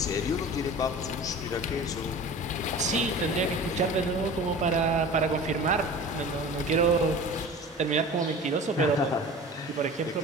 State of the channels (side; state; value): both; normal; correlation 0.38